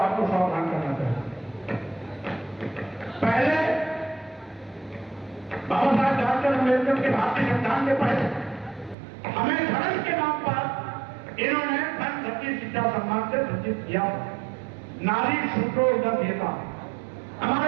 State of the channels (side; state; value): left; drops out; at 9.0 s